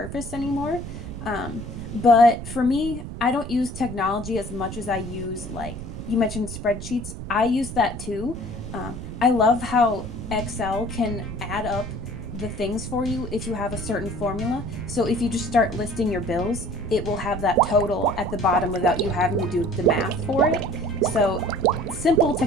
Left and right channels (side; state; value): right; noise; rumble, 9 dB below the sound